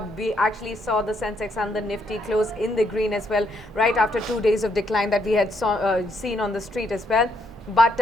We actually saw the Sensex and the Nifty close in the green as well, right after 2 days of decline that we had seen on the street as well. But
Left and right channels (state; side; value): normal; both; correlation 0.74